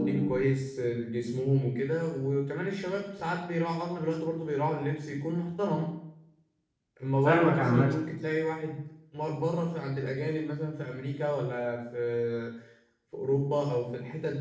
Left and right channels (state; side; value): identical; both; correlation 1.00